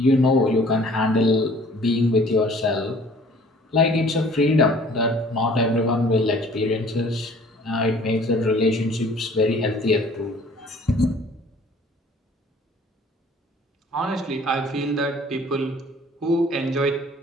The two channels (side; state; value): both; normal; correlation 0.53